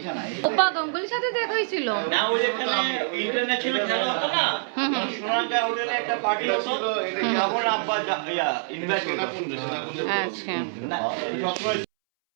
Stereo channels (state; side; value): silent; left; 61 dB below the other